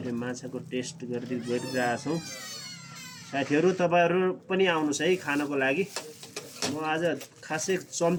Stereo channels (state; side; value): identical; both; correlation 1.00